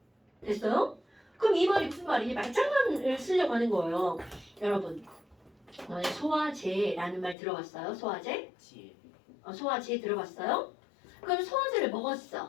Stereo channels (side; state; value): right; drops out; at 7.4 s